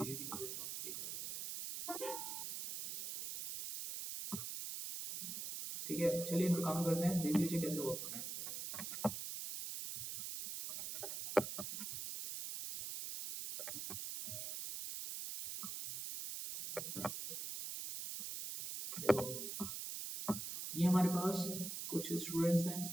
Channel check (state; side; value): noise; right; hiss, 5 dB below the sound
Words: ही कर देता हूँ, ठीक है। ठीक है, चलिए इन पे काम करते हैं, देख लीजिए कैसे वर्क होना है। देखो ये हमारे पास कुछ स्टूडेंट्स हैं,